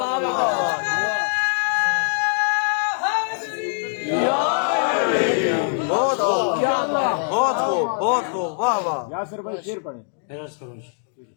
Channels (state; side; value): silent; right; digital silence